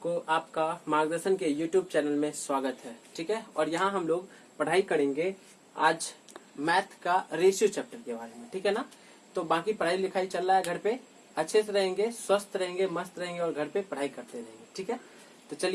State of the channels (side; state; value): both; identical; correlation 1.00